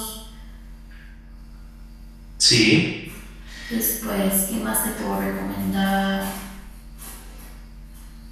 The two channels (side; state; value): both; identical; correlation 1.00